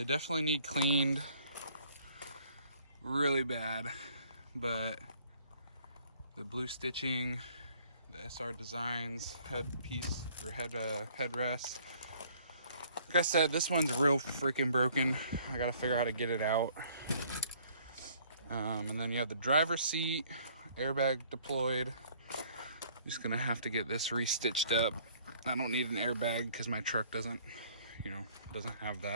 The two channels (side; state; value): both; inverted; correlation -0.59